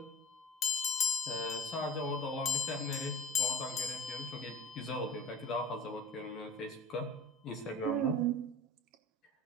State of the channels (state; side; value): normal; both; correlation 0.37